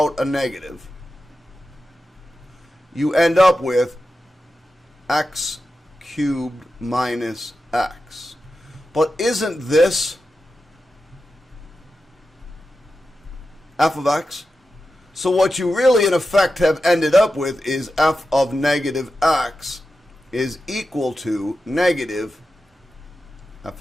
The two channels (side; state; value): both; normal; correlation 0.91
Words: a negative, you end up with x cubed minus x. But isn't this f of x? So what you really in effect have ended up with is f of negative x is equal to negative f